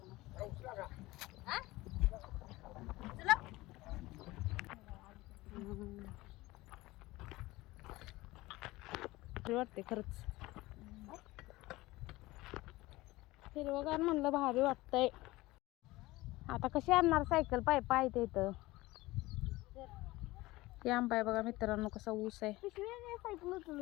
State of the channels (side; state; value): right; quieter; 19.5 dB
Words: वाटते खरंच, हिरवगार म्हणलं भारी वाटतंय. आता कशी आणणार सायकल, पाय पाय ते इथं. हे आंबा आहे बघा मित्रांनो, कसा ऊस आहे